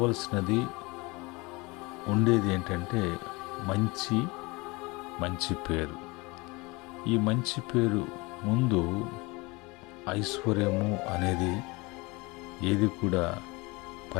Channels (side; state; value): right; quieter; 25.3 dB